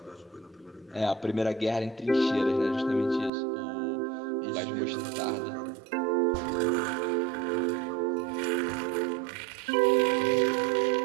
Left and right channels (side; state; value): left; drops out; at 3.3 s